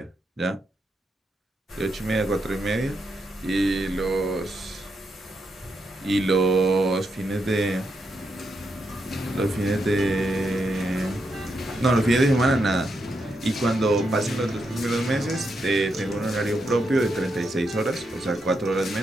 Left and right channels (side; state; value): both; normal; correlation 0.82